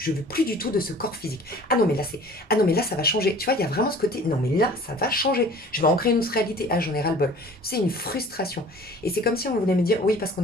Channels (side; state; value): both; normal; correlation 0.47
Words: veux plus du tout de ce corps physique. Ah non mais là ça va changer. Tu vois, il y a vraiment ce côté non mais là ça va changer. Je vais en créer une autre réalité. Ah j'en ai ras-le-bol. C'est une frustration. Et c'est comme si on voulait me dire oui parce qu'on